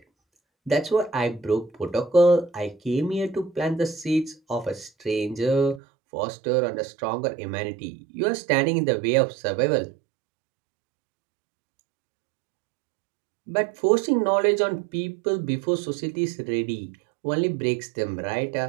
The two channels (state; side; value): drops out; left; at 5.8 s